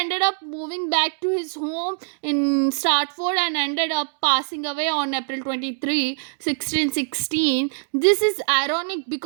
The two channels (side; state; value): left; silent; digital silence